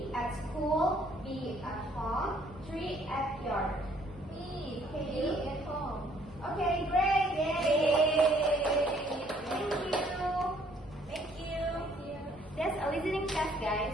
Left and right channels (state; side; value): normal; both; correlation 0.63